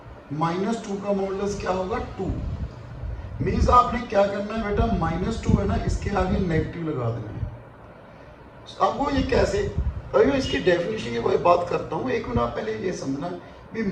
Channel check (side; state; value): both; identical; correlation 1.00